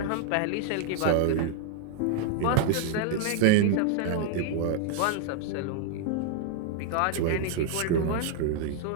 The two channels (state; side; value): different; both; correlation -0.01